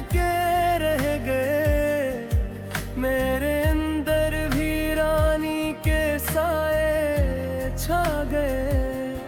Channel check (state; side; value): identical; both; correlation 1.00